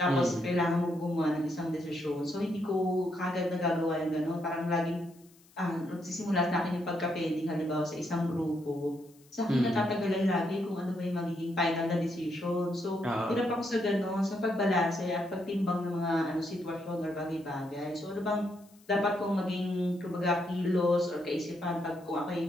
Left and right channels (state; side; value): noise; left; hiss, 29 dB below the sound